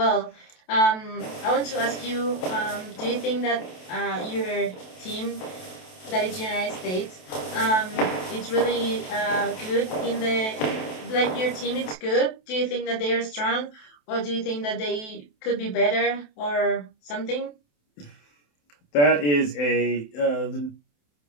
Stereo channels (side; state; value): right; late; 27 ms